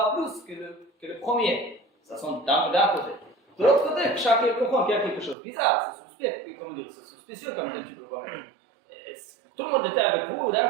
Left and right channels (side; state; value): left; drops out; at 5.4 s